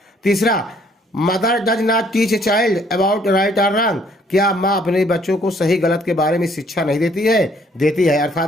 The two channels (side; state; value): both; normal; correlation 0.63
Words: तीसरा, mother does not teach a child about right और रॉन्ग, क्या माँ अपने बच्चों को सही गलत के बारे में शिक्षा नहीं देती है? देती है,